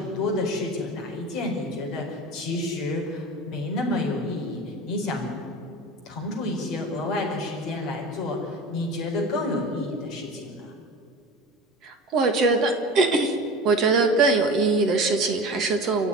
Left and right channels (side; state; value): both; normal; correlation 0.33